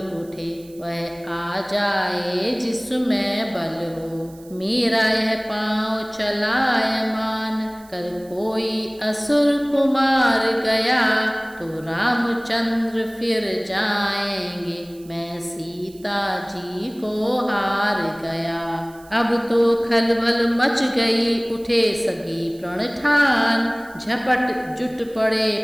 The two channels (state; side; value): noise; right; hiss, 25 dB below the sound